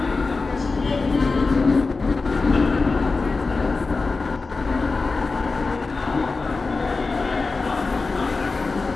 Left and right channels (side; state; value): right; quieter; 4.0 dB